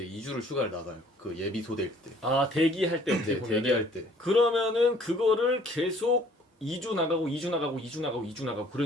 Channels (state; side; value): normal; both; correlation 0.57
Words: 2주를 휴가를 나가요. 그 예비 소대일 때. 대기할 때 어떻게 네, 보면은 대기할 때. 그러면은 그거를 계속 2주 나가고 2주 나가고 2주 나가고 2주 나가고